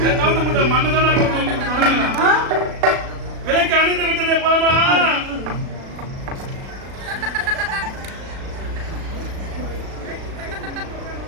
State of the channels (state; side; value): late; left; 37 ms